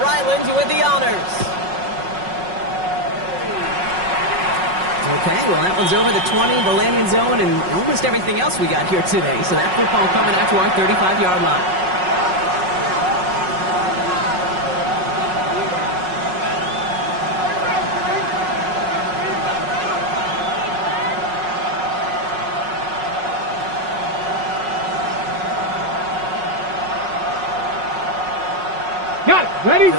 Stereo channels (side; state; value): left; late; 5.4 ms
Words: Ryland with the honors. Okay, well, that one's over the 20, the landing zone, and almost everything else we got here today. So that football coming out to our 35-yard line. Got it. Ready?